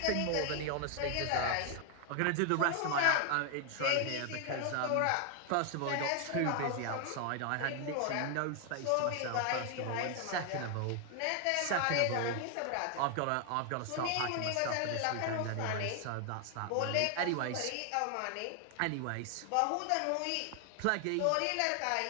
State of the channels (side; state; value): both; different; correlation 0.00